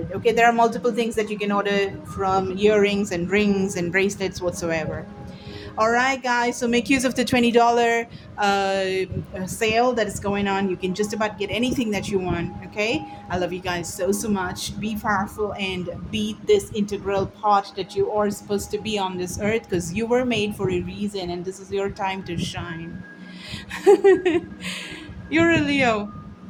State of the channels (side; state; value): both; identical; correlation 1.00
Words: Okay, there are multiple things that you can order, from earrings and rings and bracelets whatsoever. All right, guys. So make use of the $20 sale that is going on. You can just about get anything that you want. Okay. I love you guys so, so much. Be powerful and be this integral part that you are supposed to be on this earth, because you were made for a reason and this is your time to shine. You're a Leo.